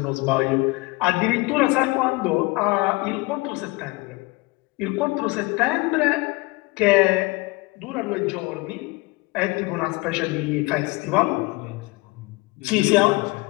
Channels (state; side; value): quieter; right; 24.0 dB